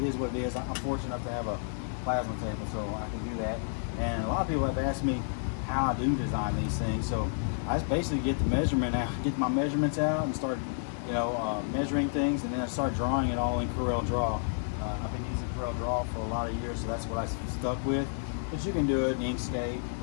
is what it is. I'm fortunate enough to have a plasma table, so I can do that. And a lot of people have asked me how I do design these things. So I just basically get the measurement out, get my measurements out, and start, you know, measuring things, and then I start drawing it all in Corel Draw. I've been using Corel Draw for a lot of years, so that's what I stuck with. But you can do it in Inkscape,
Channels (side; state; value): right; silent; digital silence